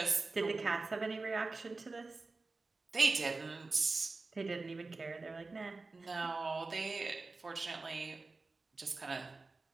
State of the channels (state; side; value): quieter; left; 3.6 dB